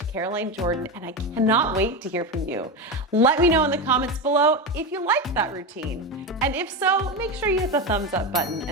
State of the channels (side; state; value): both; normal; correlation 0.17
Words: Caroline Jordan, and I cannot wait to hear from you. Let me know in the comments below if you liked that routine. And if so, make sure you hit the thumbs up button